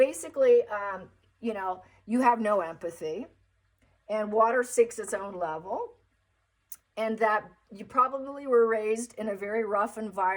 you have no empathy. And water seeks its own level. And that you probably were raised in a very rough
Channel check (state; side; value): identical; both; correlation 1.00